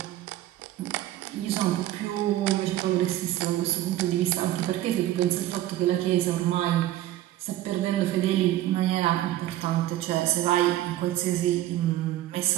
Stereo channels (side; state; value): left; quieter; 14.2 dB